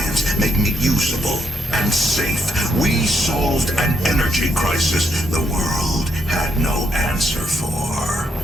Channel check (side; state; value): both; normal; correlation 0.76